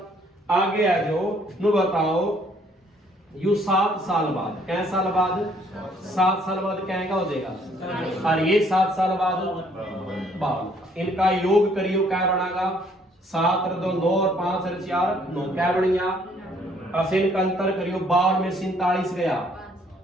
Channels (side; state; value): both; normal; correlation 0.64